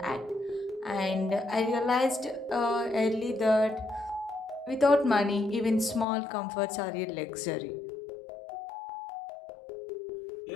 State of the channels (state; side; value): drops out; right; at 6.1 s